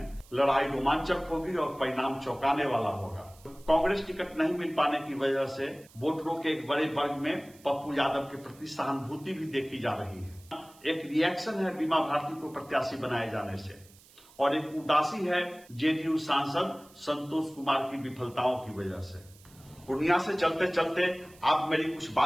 लड़ाई रोमांचक होगी और परिणाम चौंकाने वाला होगा। कांग्रेस टिकट नहीं मिल पाने की वजह से वोटरों के एक बड़े वर्ग में पप्पू यादव के प्रति सहानुभूति भी देखी जा रही है। एक रिएक्शन है बीमा भारती को प्रत्याशी बनाए जाने से, और एक उदासी है जेडीयू सांसद संतोष कुमार की विफलताओं की वजह से। पूर्णिया से चलते चलते आप मेरी कुछ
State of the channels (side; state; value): right; noise; hiss, 25 dB below the sound